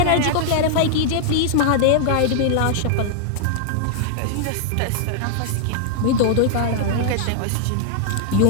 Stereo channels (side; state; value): both; different; correlation -0.01